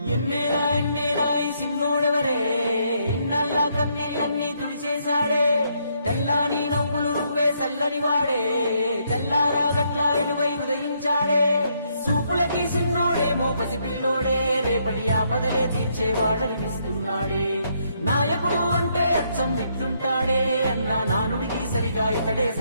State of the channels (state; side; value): inverted; both; correlation -0.74